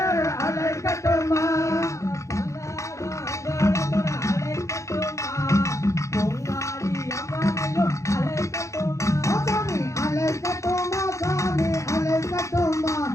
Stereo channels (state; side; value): late; right; 0.15 ms